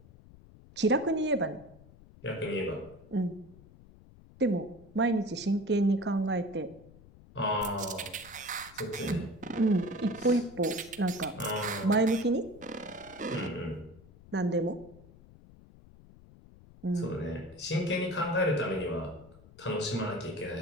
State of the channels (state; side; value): noise; left; rumble, 22 dB below the sound